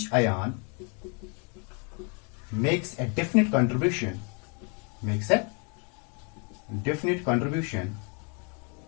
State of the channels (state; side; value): quieter; right; 35.3 dB